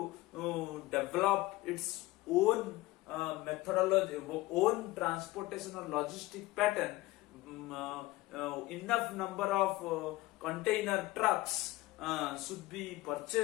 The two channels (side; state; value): right; quieter; 18.9 dB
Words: develop its own methodology, own transportation or logistic pattern, enough number of container trucks should be